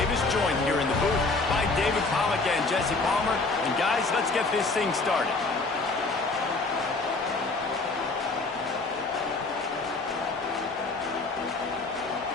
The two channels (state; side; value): quieter; right; 3.6 dB